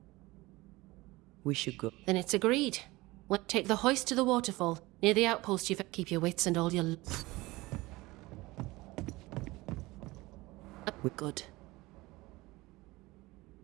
We should go. Then it's agreed. Take the hoist to the waterfall. Near the outpost, you keep your wits and all your... We're good.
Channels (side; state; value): left; quieter; 20.8 dB